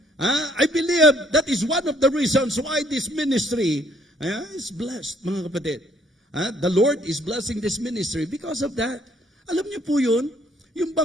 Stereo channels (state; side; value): normal; both; correlation 0.64